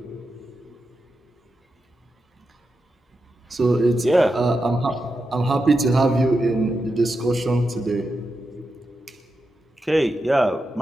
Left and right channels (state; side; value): normal; both; correlation 0.88